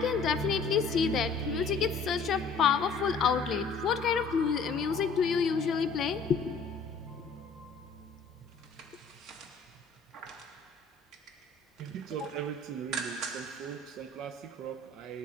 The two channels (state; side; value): quieter; right; 4.5 dB